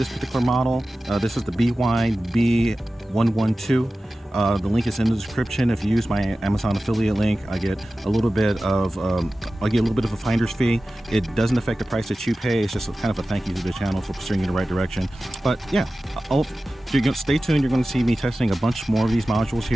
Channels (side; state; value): both; normal; correlation 0.95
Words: particular model, this is the Bwine B112. The link is in the description. If you use my Amazon affiliate link, I get a little bit of a finder's fee. It doesn't affect the price that you pay. It's just kind of a thank you to the channel for steering you in the right direction. But yeah, stay tuned. You're going to see me testing a bunch more of these modules